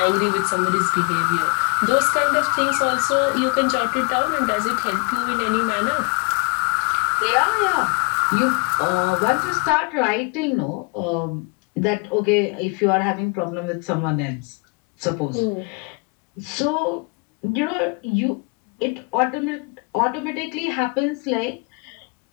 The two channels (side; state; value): right; quieter; 33.2 dB